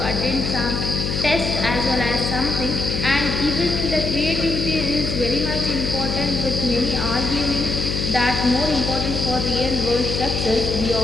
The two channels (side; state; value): left; noise; hum, 2 dB below the sound